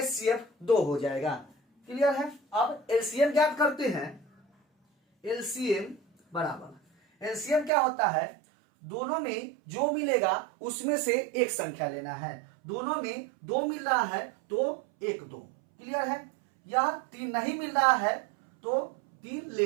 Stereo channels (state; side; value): drops out; left; at 7.7 s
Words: 2 हो जाएगा। क्लियर है, अब LCM ज्ञात करते हैं। LCM बराबर, LCM क्या होता है, दोनों में जो मिलेगा उसमें से एक संख्या लेना है। दोनों में 2 मिल रहा है तो 1 2। क्लियर है। यह 3 नहीं मिल रहा है तो 3